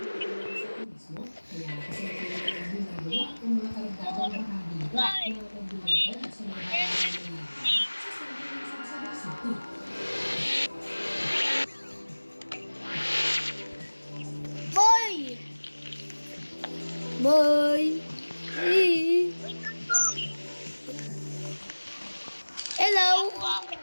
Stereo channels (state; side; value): inverted; both; correlation -1.00